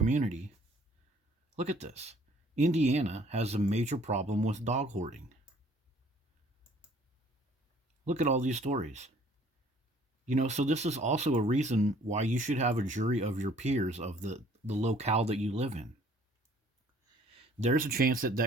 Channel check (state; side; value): normal; both; correlation 0.57